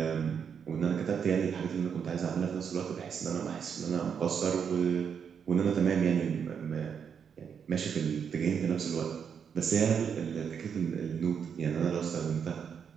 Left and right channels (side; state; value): left; quieter; 7.2 dB